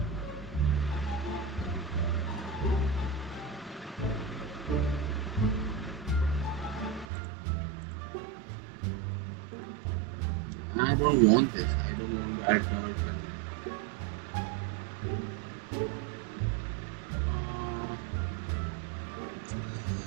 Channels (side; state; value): left; drops out; at 7.1 s